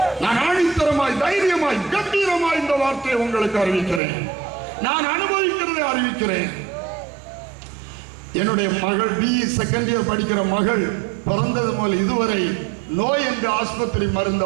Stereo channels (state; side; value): drops out; left; at 4.0 s